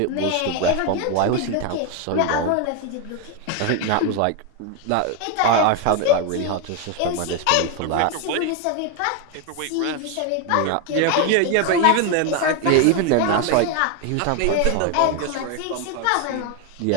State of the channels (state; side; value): different; both; correlation 0.01